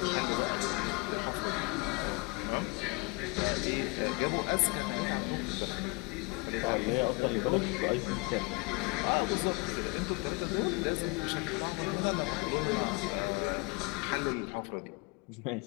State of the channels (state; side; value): quieter; right; 28.2 dB